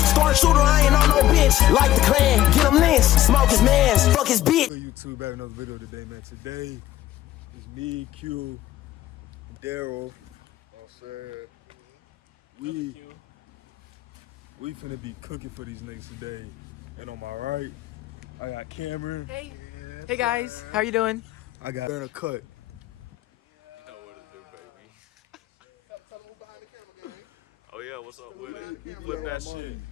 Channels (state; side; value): quieter; right; 13.9 dB